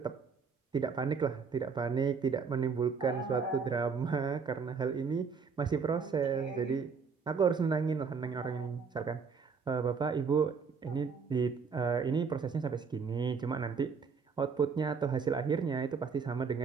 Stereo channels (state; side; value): quieter; left; 5.5 dB